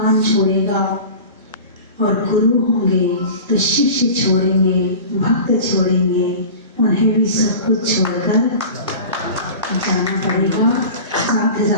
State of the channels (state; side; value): inverted; both; correlation -0.35